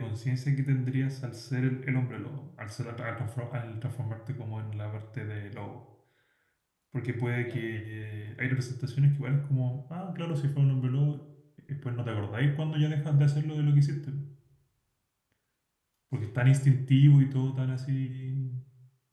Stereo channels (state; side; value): identical; both; correlation 1.00